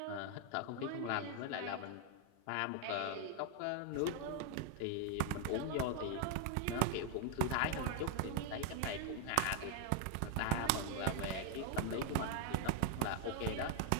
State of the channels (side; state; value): both; different; correlation 0.00